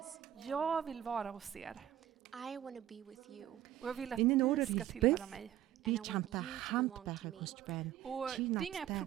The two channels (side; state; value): left; quieter; 12.2 dB